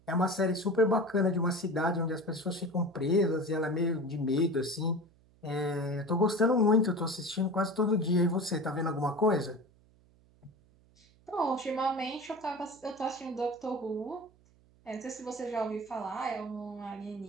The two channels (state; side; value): noise; right; hum, 30 dB below the sound